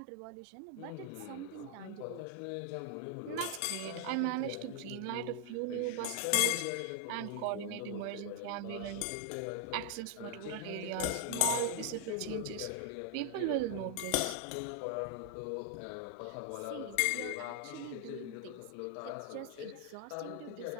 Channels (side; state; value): both; different; correlation 0.00